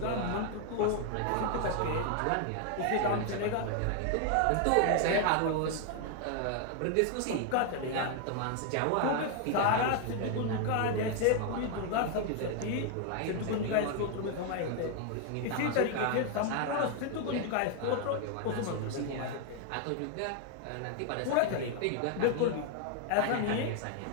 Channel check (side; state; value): both; different; correlation 0.00